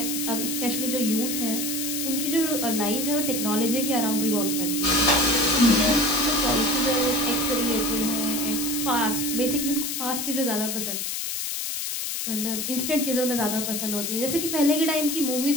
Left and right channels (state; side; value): noise; left; hiss, 3 dB below the sound